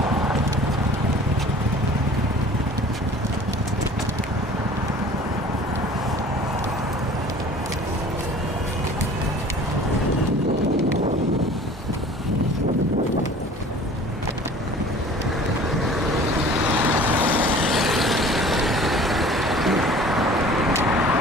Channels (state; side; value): normal; both; correlation 0.46